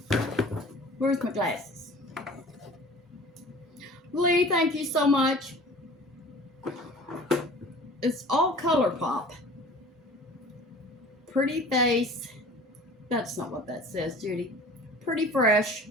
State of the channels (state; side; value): normal; both; correlation 0.44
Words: Where's my glasses? Lee, thank you so much. It's all ColourPop. Pretty face. That's not what that says, Judy. Pretty fresh.